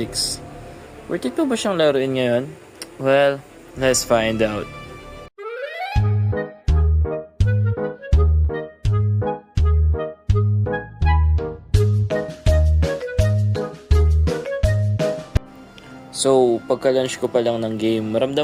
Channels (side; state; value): both; identical; correlation 1.00